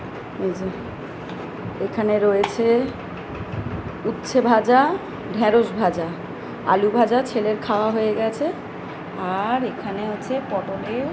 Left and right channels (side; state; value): both; identical; correlation 1.00